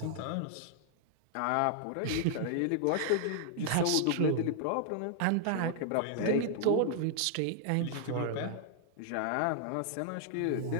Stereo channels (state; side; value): different; both; correlation -0.01